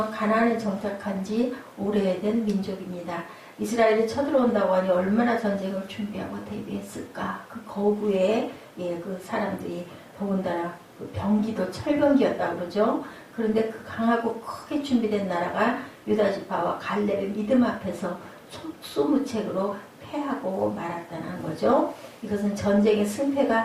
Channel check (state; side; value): identical; both; correlation 1.00